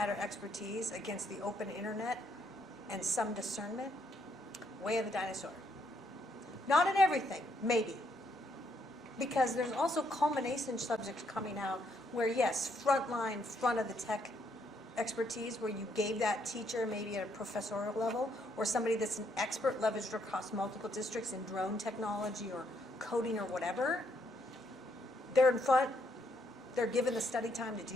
expertise against the open internet and some discernment, way of the dinosaur. Not in everything, maybe. Because there's also culmination subjects coming out where, yes, frontline, front of the tech expertise, where you gave that teacher maybe at a professorial level, or somebody that's an expert leveraged across multiple districts in drone technology or coding or whatever. They're in front, they're given the study time to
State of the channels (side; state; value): both; normal; correlation 0.73